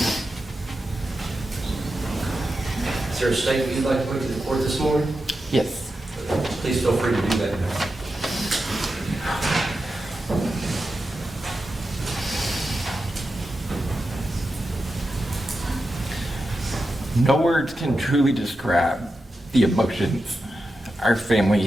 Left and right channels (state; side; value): normal; both; correlation 0.90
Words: Is there a statement you'd like to put to the court this morning? Yes. Please feel free to do that now. No words can truly describe the emotions our family